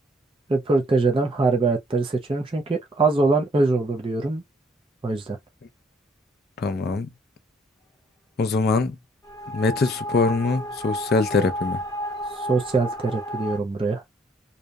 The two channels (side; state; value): both; normal; correlation 0.62